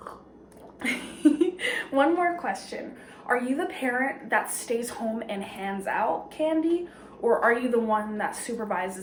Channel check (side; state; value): both; identical; correlation 1.00